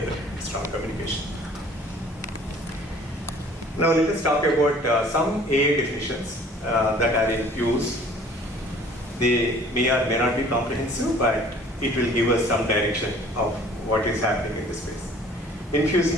strong communication. Now let us talk about some AI definitions that are in use. They may or may not be comprehensive, but it will give us some direction of what is happening in this space.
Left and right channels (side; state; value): both; normal; correlation 0.52